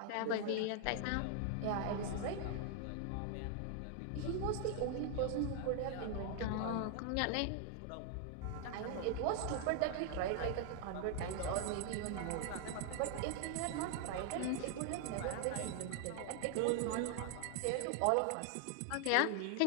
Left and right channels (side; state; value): both; different; correlation 0.00